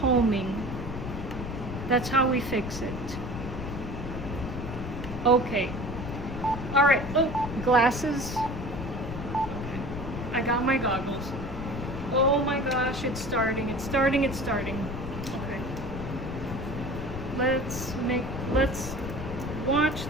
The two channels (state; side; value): noise; left; rumble, 7 dB below the sound